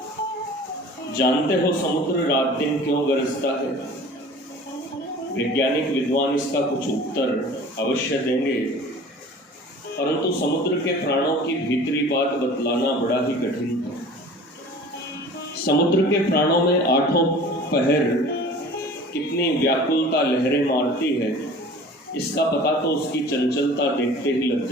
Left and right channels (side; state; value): both; normal; correlation 0.43